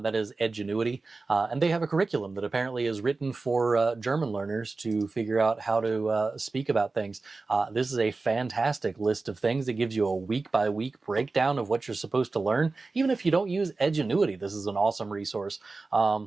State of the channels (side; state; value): left; quieter; 3.7 dB